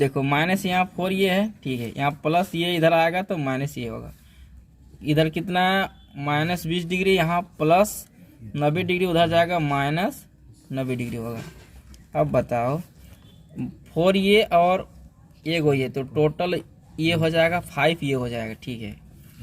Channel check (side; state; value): both; identical; correlation 1.00